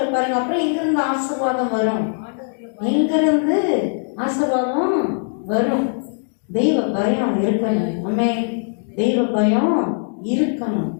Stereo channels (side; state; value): right; silent; 65 dB below the other